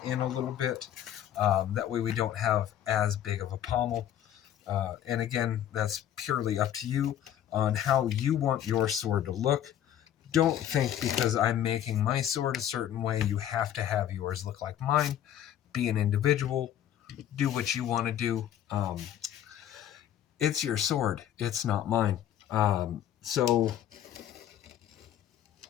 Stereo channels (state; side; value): quieter; right; 10.9 dB